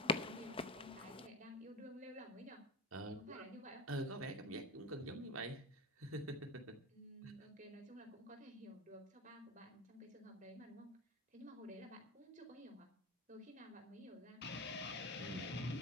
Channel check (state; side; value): normal; both; correlation 0.26